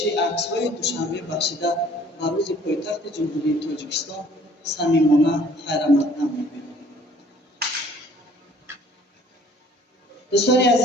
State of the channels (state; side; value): normal; both; correlation 0.56